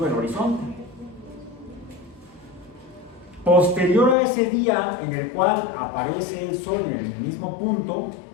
el horizonte. Posterior a ese día en el cual aparece el sol en el mismo punto,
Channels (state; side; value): drops out; right; at 4.2 s